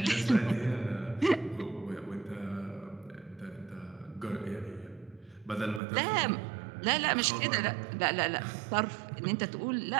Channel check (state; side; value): drops out; left; at 5.8 s